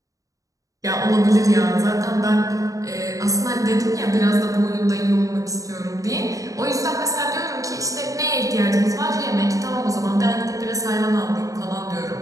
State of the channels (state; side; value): late; left; 0.16 ms